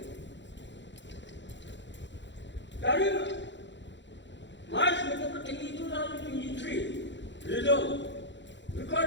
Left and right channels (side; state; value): right; late; 0.53 ms